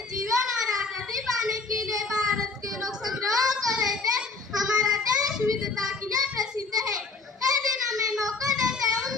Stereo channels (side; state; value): right; quieter; 4.0 dB